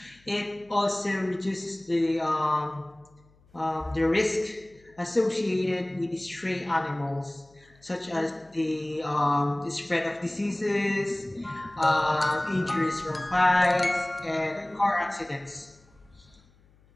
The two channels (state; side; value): noise; left; hum, 30 dB below the sound